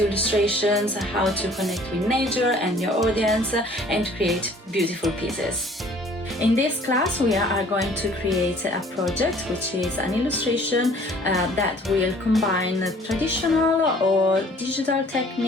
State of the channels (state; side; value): normal; both; correlation 0.54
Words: illustrations, how to connect with nature and your audience, and create beautiful pieces. In this class, we are going to create a project which is an illustration that will combine traditional or digital